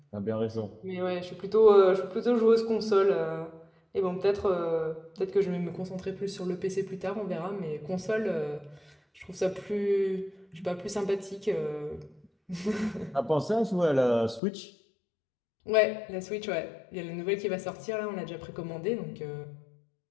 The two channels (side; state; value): right; drops out; at 14.4 s